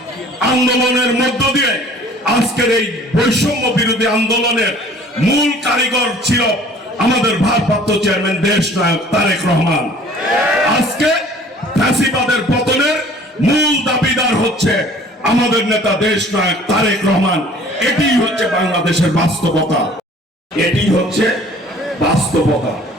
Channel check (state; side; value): normal; both; correlation 0.51